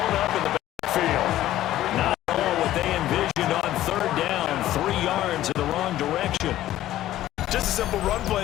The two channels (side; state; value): right; quieter; 13.9 dB